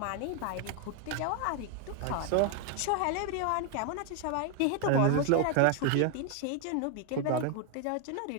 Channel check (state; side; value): different; both; correlation 0.01